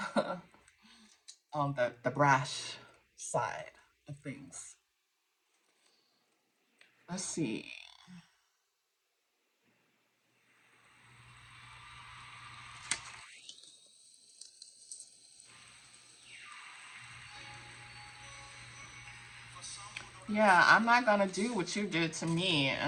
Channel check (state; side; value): identical; both; correlation 1.00